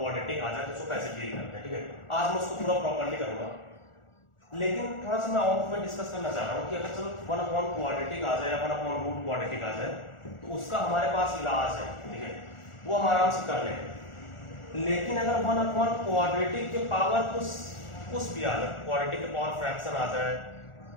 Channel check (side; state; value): right; late; 1.4 ms